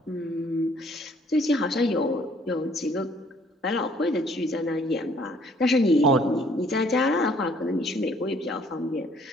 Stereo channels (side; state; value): both; normal; correlation 0.61